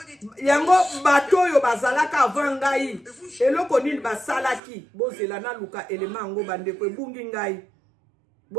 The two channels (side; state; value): left; drops out; at 4.6 s